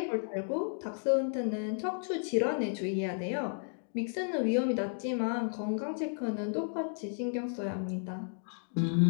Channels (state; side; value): silent; right; 56 dB below the other